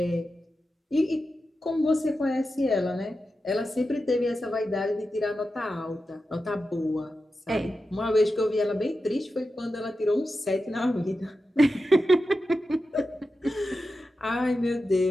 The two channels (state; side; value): normal; both; correlation 0.91